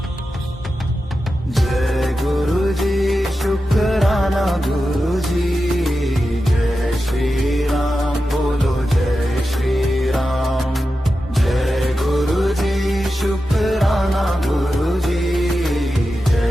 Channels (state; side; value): normal; both; correlation 0.91